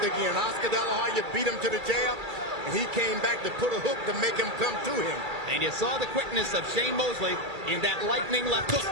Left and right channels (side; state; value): left; late; 2.3 ms